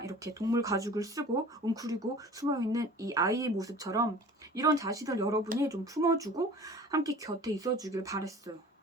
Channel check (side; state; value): both; normal; correlation 0.44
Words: 이렇게 동물 가죽을 쓰고 웅크리고 숨어있는 이 아이의 모습처럼 이런 자신을 여러분이 좀 품어주고 함께 곁에 있어주길 바랬어요.